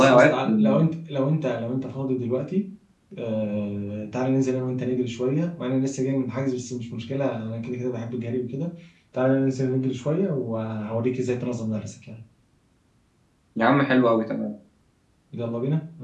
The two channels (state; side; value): identical; both; correlation 1.00